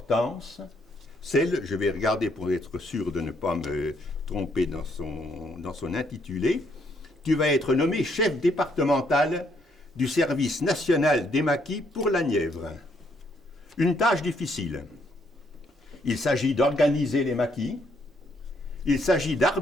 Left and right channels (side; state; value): both; normal; correlation 0.71